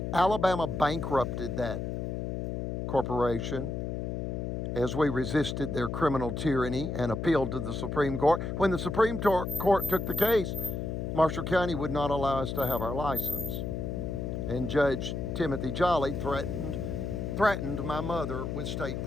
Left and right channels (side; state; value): left; noise; hum, 3 dB below the sound